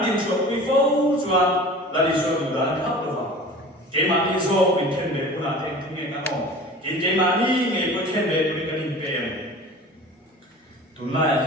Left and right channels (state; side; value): normal; both; correlation 0.40